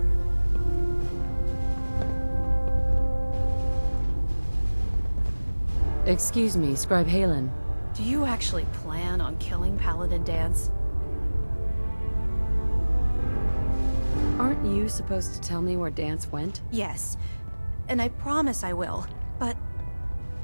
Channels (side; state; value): both; inverted; correlation -1.00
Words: Excuse me, Scribe Halen. Do you actually plan on killing Paladin Dance? Aren't you supposed to tell me where Dance went? Yes, and I promise I will. But